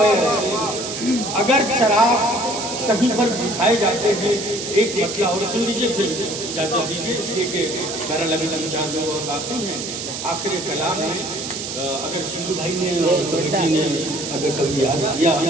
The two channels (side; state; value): right; noise; hiss, 6 dB below the sound